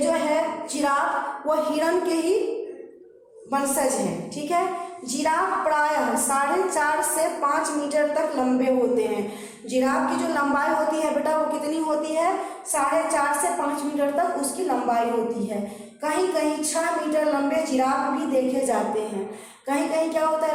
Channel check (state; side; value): identical; both; correlation 1.00